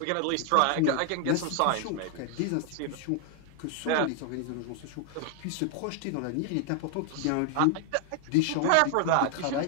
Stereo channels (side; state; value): both; different; correlation 0.00